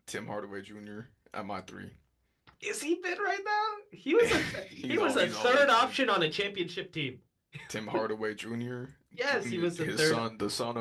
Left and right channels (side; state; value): both; identical; correlation 1.00